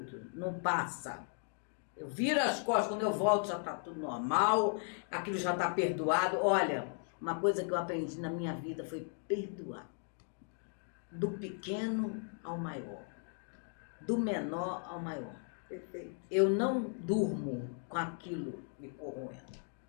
não passa. Eu viro as costas, quando eu volto já tá tudo normal, aquilo já tá perdoado. Olha, uma coisa que eu aprendi na minha vida foi perdoar. Do pequeno ao maior, do menor ao maior. Perfeito. Eu não durmo com aquilo me corroendo.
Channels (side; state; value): right; silent; 53 dB below the other